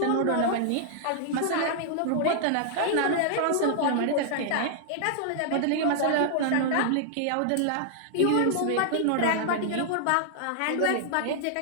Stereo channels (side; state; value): both; different; correlation -0.01